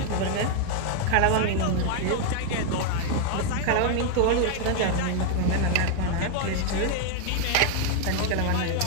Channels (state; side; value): different; both; correlation 0.00